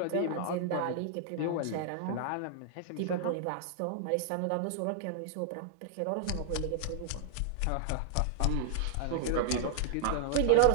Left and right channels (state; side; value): different; both; correlation 0.00